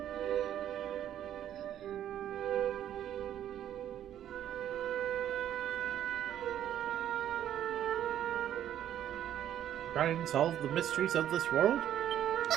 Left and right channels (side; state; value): left; quieter; 11.0 dB